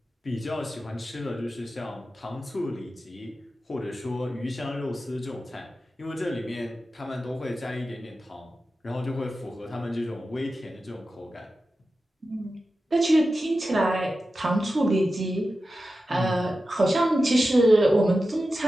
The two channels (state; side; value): normal; both; correlation 0.92